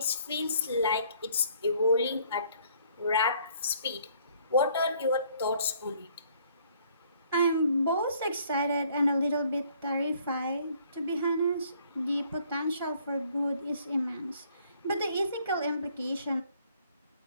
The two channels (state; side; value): inverted; both; correlation -0.62